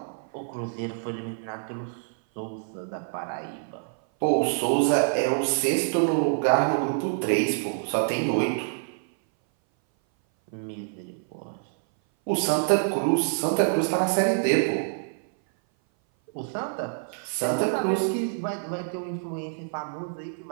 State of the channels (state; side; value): silent; left; 58 dB below the other